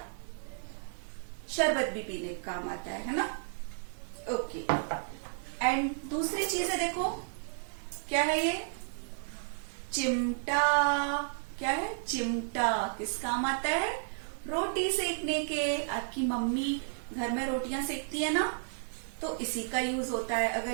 शरबत भी पीने का काम आता है ना। ओके। एंड दूसरी चीज है, देखो क्या है ये, चिमटा। क्या है, चिमटा। किस काम आता है, रोटी सेकने के। आपकी मम्मी घर में रोटियां सेकती है ना, तो इसी का यूज होता है। अगर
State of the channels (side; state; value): left; silent; digital silence